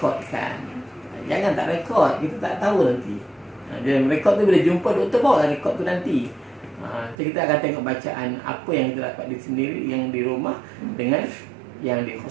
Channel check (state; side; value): drops out; left; at 7.2 s